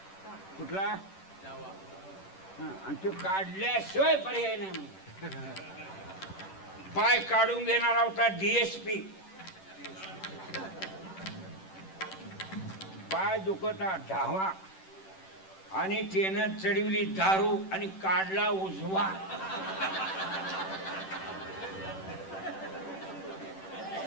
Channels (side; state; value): right; late; 10 ms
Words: कुठला, आणि तो काढल्याशिवाय पर्याय नाही म्हणजे पाय काढून घेणारा होता DSP. पाय दुखता धावा आणि त्यानं चढवली दारू आणि काढला उजवा.